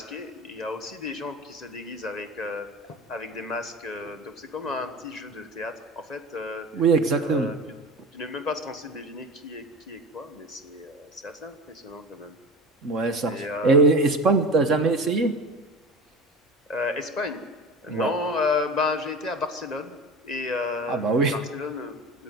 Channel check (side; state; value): both; normal; correlation 0.32